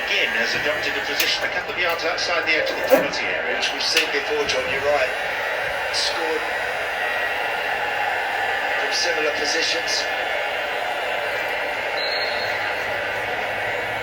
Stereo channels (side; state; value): both; identical; correlation 1.00